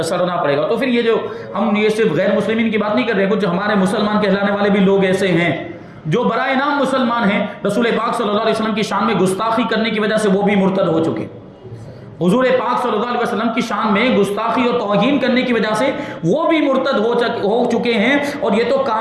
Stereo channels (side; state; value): both; identical; correlation 1.00